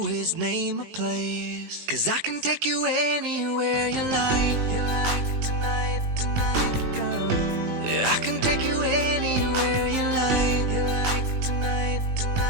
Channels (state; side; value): late; left; 19 ms